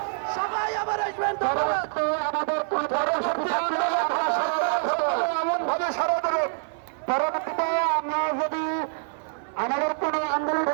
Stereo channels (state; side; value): silent; left; 61 dB below the other